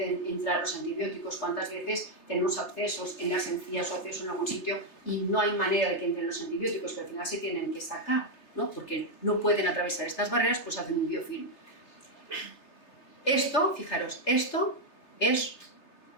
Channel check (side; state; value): right; late; 3.3 ms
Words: entrar los antibióticos. ¿Cuántas veces tenemos abscesos en las encías o abscesos en algún sitio y no hay manera de que entren los antibióticos, pero al final se tienen que sacar, ¿no? Porque no pueden atravesar estas barreras, pues hacen un biofilm. Esto, fijaros, esto es